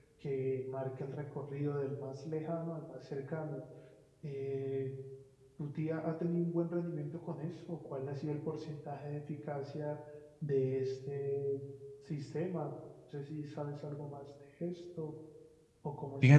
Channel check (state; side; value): identical; both; correlation 1.00